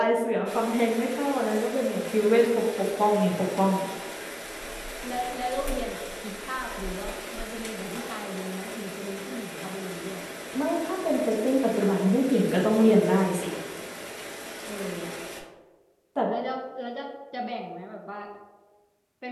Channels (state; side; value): identical; both; correlation 1.00